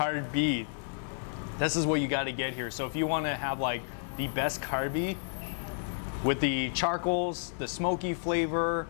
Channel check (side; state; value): right; silent; digital silence